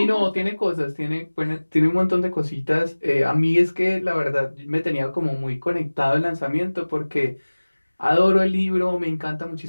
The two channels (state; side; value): inverted; both; correlation -1.00